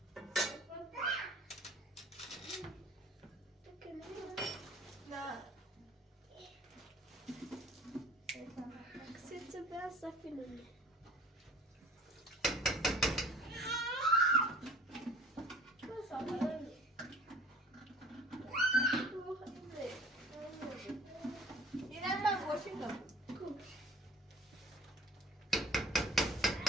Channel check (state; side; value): normal; both; correlation 0.46